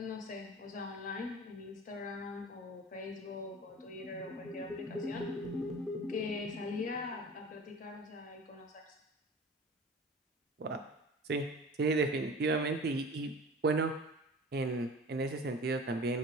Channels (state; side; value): normal; both; correlation 0.40